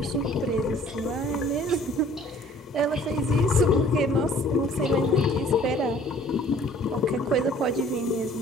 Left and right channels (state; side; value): normal; both; correlation 0.55